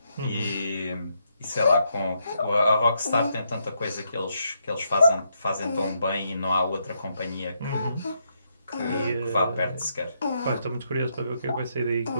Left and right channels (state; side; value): inverted; both; correlation -0.79